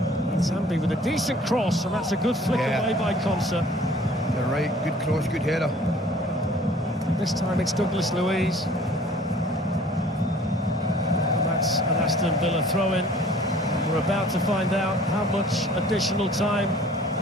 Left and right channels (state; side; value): normal; both; correlation 0.52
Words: Manzambi with a decent cross, and that's a good flick away by Concert. You're right, good cross, good header. This time it's Douglas Luiz. And that's an Aston Villa throw-in. We're about to find out how much additional time